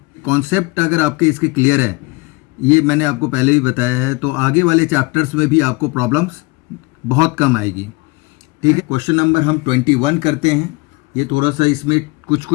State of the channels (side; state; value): right; quieter; 25.5 dB